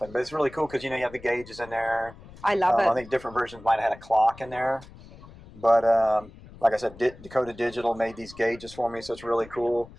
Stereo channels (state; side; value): noise; left; rumble, 20 dB below the sound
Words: but it's really cool because, you know, you have the gauges in there. I love it. I think different versions might have had a clock in there. But like I said, Dakota Digital made these gauges for me, so it's really cool.